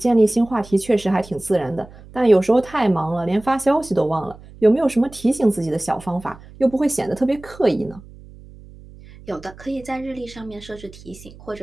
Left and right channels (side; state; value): right; noise; hum, 20 dB below the sound